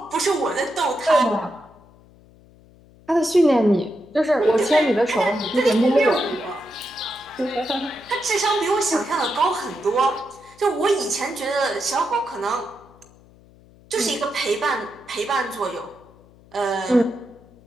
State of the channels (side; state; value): left; noise; hum, 26 dB below the sound